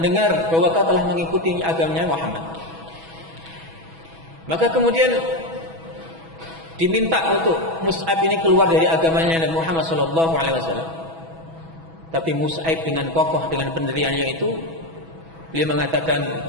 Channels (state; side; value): late; left; 6.1 ms